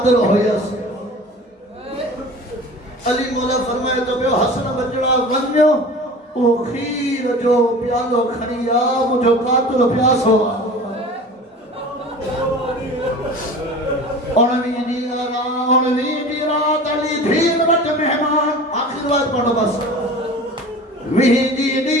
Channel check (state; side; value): normal; both; correlation 0.38